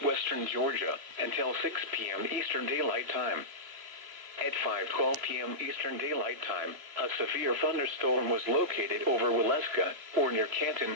Georgia, until 6 p.m. Eastern Daylight Time. At 5:12 p.m. Eastern Daylight Time, a severe thunderstorm was located over Waleska, or near Canton,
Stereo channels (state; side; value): late; left; 3.0 ms